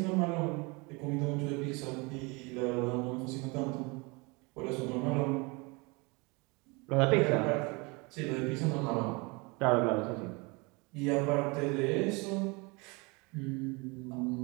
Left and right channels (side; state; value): left; quieter; 27.9 dB